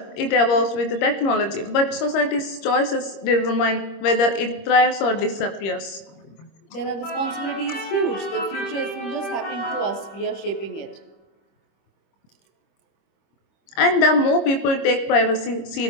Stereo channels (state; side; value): late; right; 25 ms